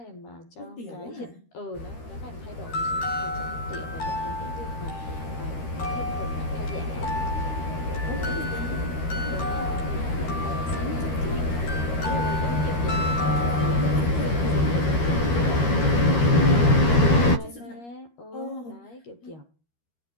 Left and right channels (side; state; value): right; late; 13 ms